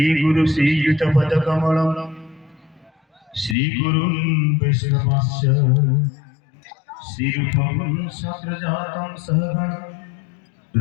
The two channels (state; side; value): drops out; right; at 3.6 s